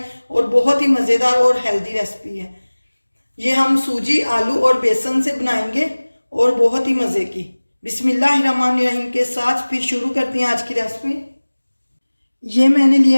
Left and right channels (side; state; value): both; inverted; correlation -1.00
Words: और बहुत ही मज़ेदार और हेल्दी रेसिपी है। ये हम सूजी, आलू और बेसन से बनाएंगे और बहुत ही मज़े की। बिस्मिल्लाहिर्रहमानिर्रहीम के साथ फिर शुरू करते हैं आज की रेसिपी। ये मैंने